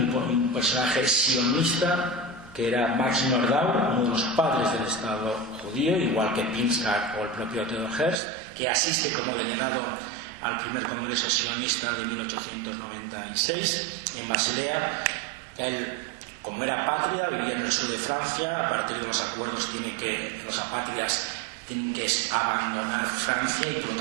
personaje sionista, que era Max Nordau, uno de los padres del Estado judío, igual que Pinchak o el propio Theodor Herzl, que asiste como delegado al primer congreso sionista de 1896 en Basilea. Él, como era patria, vivía en el sur de Francia. A partir de los acuerdos los apátridas tienen que abandonar Francia, y por lo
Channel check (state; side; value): drops out; left; at 8.2 s